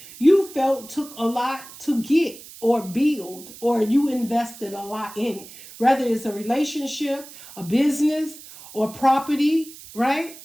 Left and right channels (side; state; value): right; noise; hiss, 17 dB below the sound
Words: you felt took a lot to get or build, or you invested a lot in it. Whether it's a relationship, a business, or property, right?